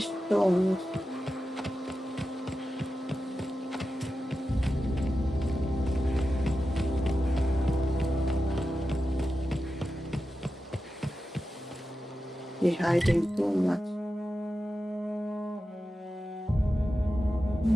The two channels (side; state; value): both; normal; correlation 0.91